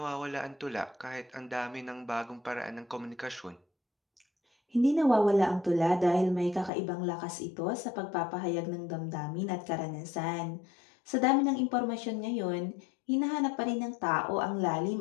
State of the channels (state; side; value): drops out; right; at 6.7 s